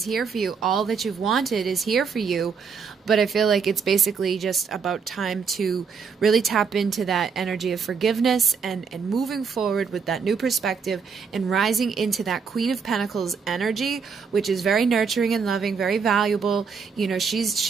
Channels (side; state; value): left; quieter; 5.8 dB